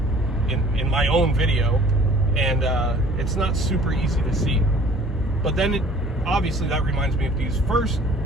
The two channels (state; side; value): normal; both; correlation 0.51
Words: in my own video? And it's not super easy to see. But then obviously that reminds me of these first